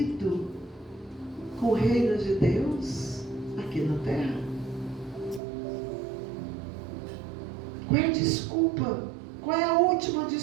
com o reino de Deus aqui na terra? Qual é a desculpa Qual é a última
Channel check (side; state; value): left; drops out; at 5.4 s